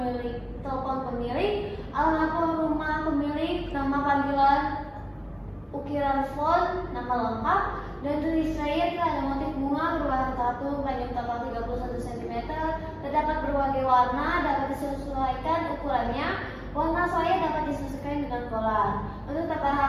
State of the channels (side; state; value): both; identical; correlation 1.00